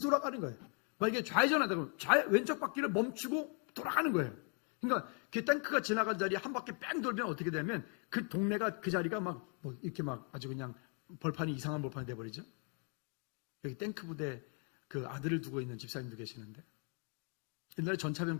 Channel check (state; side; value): quieter; right; 39.6 dB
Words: 돌아가는 거예요. 만약에 좌회전하다 그러면 왼쪽 바퀴를 멈추고 돌아가는 거예요. 그러니까 그 탱크가 지나간 자리에 한 바퀴 뺑 돌면 어떻게 되면 그 동네가, 그 자리가 이렇게 아주 그냥 이상한 벌판이 돼버리죠. 여기 탱크 부대 그 아들을 두고 있는 집사님도 계시는데, 옛날에 전차병